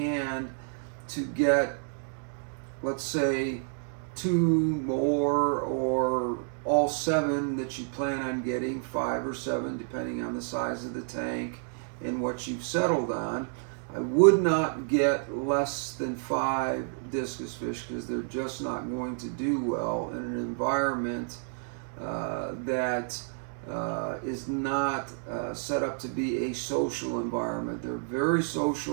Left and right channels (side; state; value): left; silent; 58 dB below the other